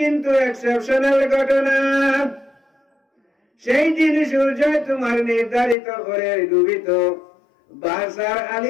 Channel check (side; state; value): right; drops out; at 5.8 s